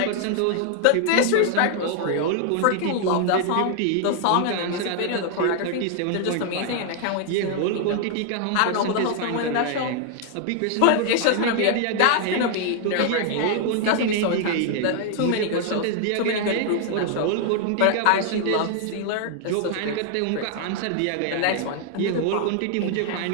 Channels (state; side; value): different; both; correlation 0.00